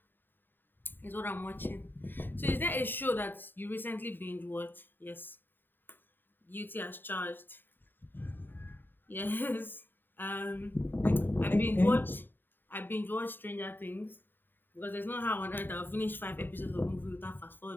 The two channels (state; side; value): late; right; 0.094 ms